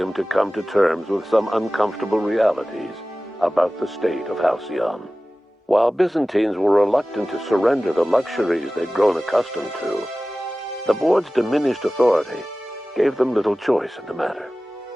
to come to terms with some uncomfortable realities about the state of Halcyon. While Byzantines were reluctant to surrender the luxuries they'd grown accustomed to, the board's diminished authority gave them little choice in the matter.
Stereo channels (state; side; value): normal; both; correlation 0.97